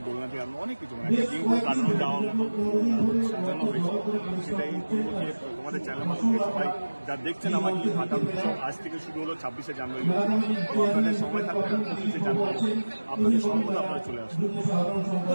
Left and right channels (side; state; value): both; inverted; correlation -1.00